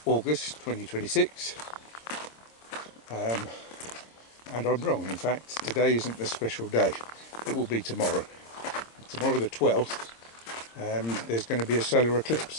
August 2026, and I'm wrong. In fact, today isn't the special day. It will be tomorrow. Tomorrow the 12th, there's going to be a solar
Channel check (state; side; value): late; right; 26 ms